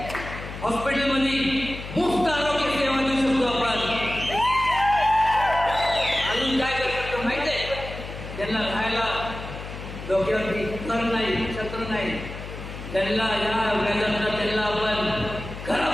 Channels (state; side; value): noise; left; hum, 10 dB below the sound